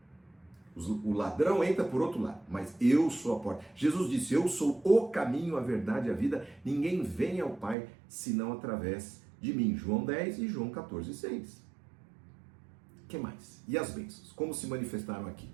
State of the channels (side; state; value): left; drops out; at 7.8 s